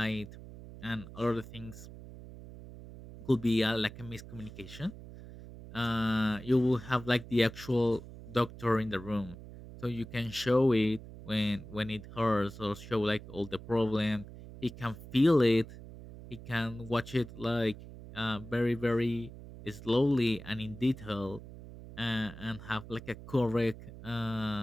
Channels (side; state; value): right; noise; hum, 15 dB below the sound